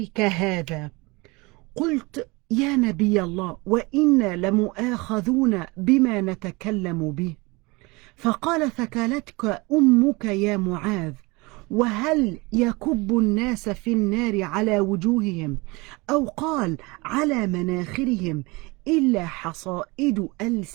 هذا. قلت: يا نبي الله، وإنا لمؤاخذون بما نتكلم به. فقال: ثكلتك أمك يا معاذ، وهل يكب الناس في النار على وجوههم أو قال على مناخرهم إلا حصائد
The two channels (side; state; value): left; quieter; 25.0 dB